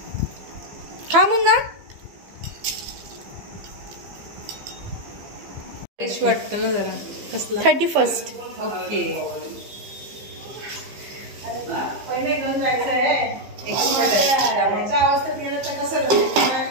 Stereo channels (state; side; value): late; left; 15 ms